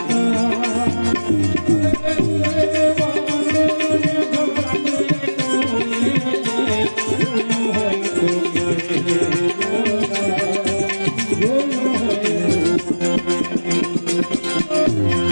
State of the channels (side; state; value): both; inverted; correlation -1.00